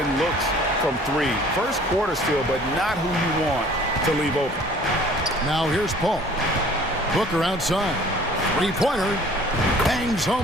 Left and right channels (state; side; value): normal; both; correlation 0.52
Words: looks from 3. First quarter still, but not who you want to leave open. Now here's Paul. Booker outside. Three-pointer. Bangs